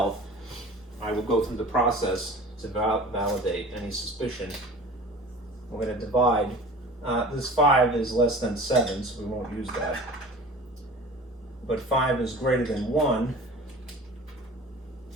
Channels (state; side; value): normal; both; correlation 0.40